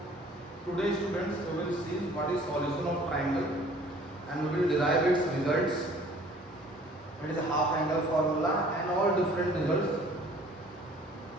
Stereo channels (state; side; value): normal; both; correlation 0.53